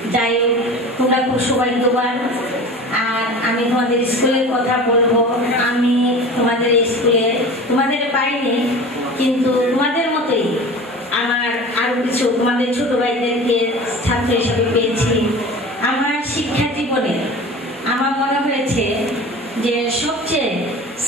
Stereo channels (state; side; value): normal; both; correlation 0.37